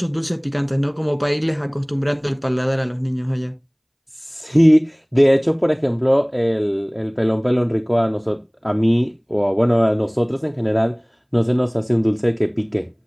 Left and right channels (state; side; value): identical; both; correlation 1.00